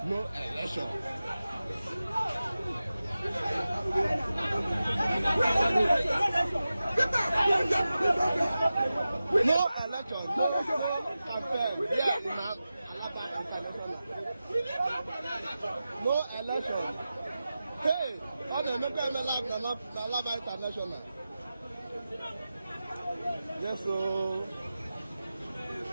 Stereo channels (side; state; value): both; inverted; correlation -0.94